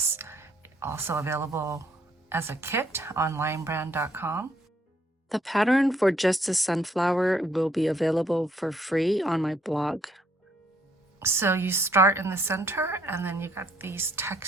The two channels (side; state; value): both; normal; correlation 0.67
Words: also available as a kit on linebrand.com. The pattern for just a sunflower will be available for free on my blog. So you start in the center and then you got these